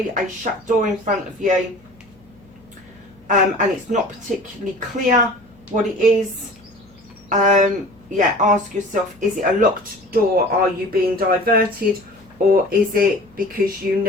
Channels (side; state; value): left; noise; hum, 29 dB below the sound